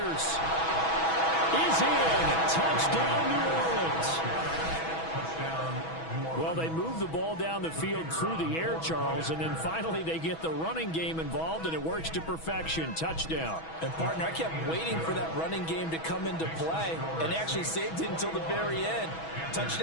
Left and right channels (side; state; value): right; late; 6.2 ms